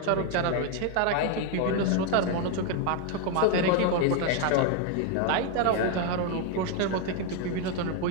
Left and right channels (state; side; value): different; both; correlation 0.01